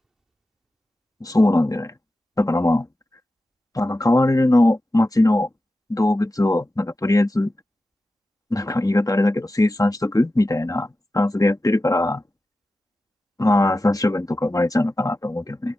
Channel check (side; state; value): both; normal; correlation 0.93